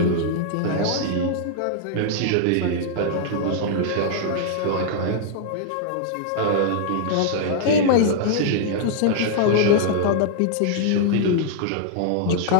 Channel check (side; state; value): both; different; correlation -0.01